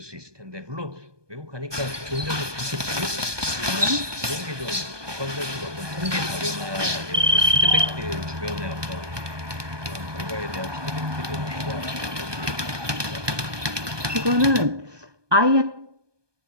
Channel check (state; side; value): late; left; 1.2 ms